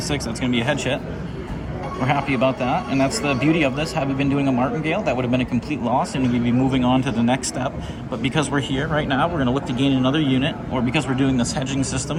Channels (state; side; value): identical; both; correlation 1.00